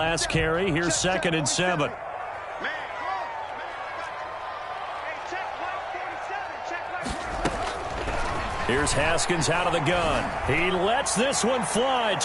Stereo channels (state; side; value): identical; both; correlation 1.00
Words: carry. Here's 2nd and 7. Here's Haskins out of the gun. He lets this one fly